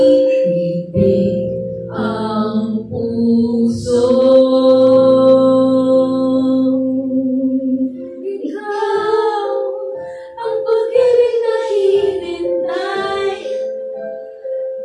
ang puso. Ikaw ang pag-ibig na hinintay.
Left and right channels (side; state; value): both; identical; correlation 1.00